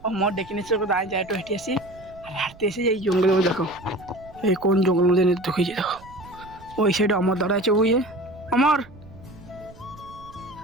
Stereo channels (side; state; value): right; noise; rumble, 21 dB below the sound